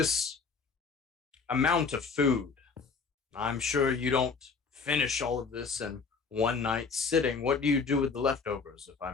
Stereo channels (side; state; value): right; quieter; 5.0 dB